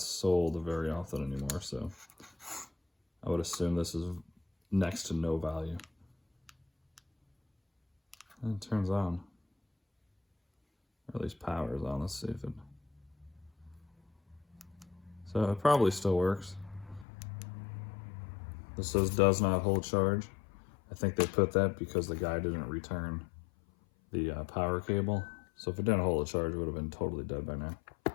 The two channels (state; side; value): drops out; right; at 17.1 s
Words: sold very often anymore, so I would assume this is next to no value. And it turns on. Or at least power is on. Let's see if it... So it probably still works. This says does not hold charge. I think they put that because the guy didn't return the power cable. So if it didn't hold a charge, it would have been totally dead by now.